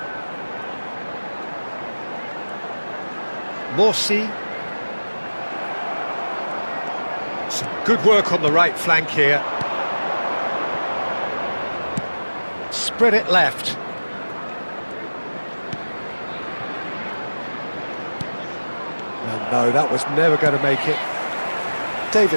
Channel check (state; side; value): inverted; both; correlation -1.00